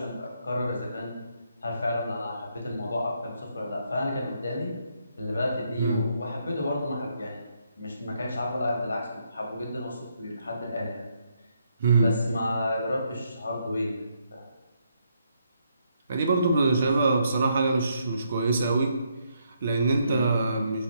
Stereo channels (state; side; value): inverted; both; correlation -0.75